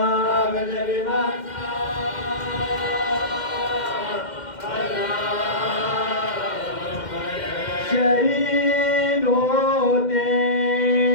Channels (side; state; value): right; late; 2.1 ms